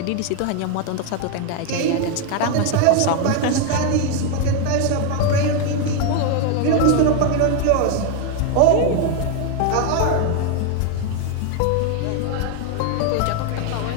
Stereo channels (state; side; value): different; both; correlation 0.01